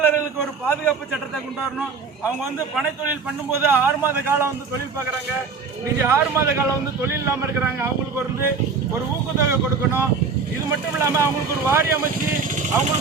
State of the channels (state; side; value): quieter; left; 5.1 dB